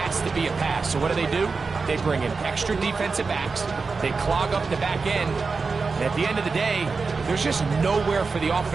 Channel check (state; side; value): quieter; left; 4.5 dB